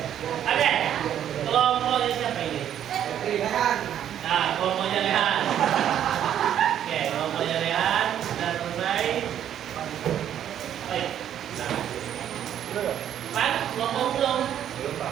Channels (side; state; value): left; quieter; 10.2 dB